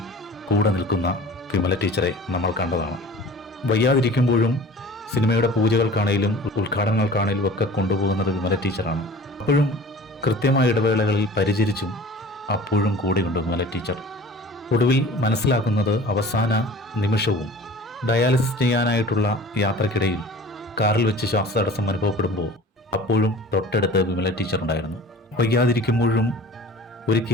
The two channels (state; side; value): normal; both; correlation 0.42